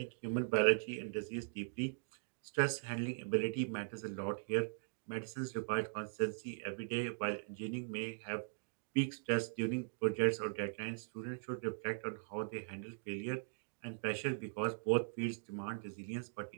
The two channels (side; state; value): left; silent; digital silence